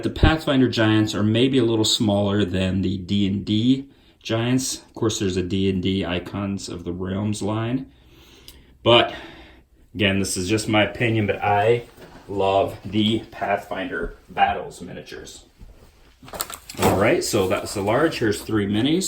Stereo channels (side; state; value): both; identical; correlation 1.00